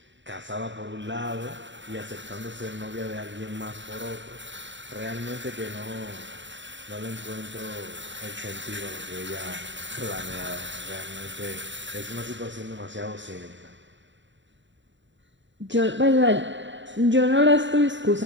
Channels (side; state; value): left; late; 0.54 ms